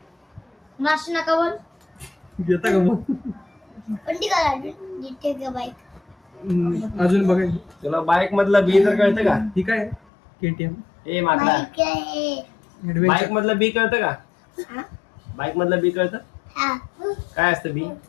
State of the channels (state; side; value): drops out; right; at 10.0 s